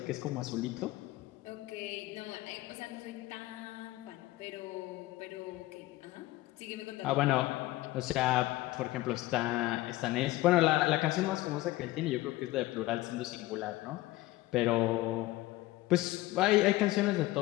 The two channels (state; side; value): quieter; right; 17.8 dB